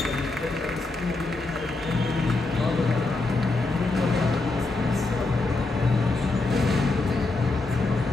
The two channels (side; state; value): right; quieter; 3.3 dB